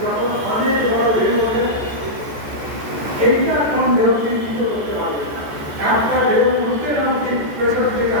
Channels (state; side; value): late; left; 14 ms